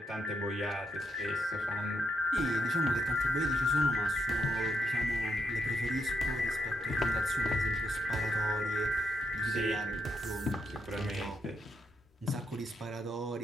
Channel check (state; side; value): normal; both; correlation 0.78